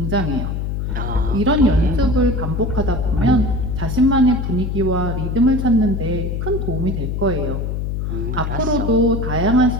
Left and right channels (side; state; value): left; noise; hum, 2 dB below the sound